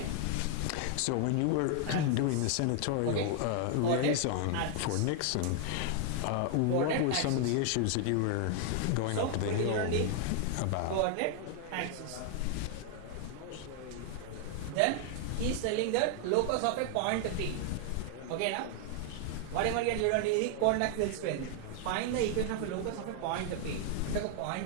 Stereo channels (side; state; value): both; different; correlation 0.00